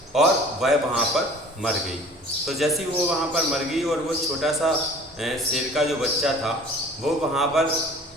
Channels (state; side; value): normal; both; correlation 0.47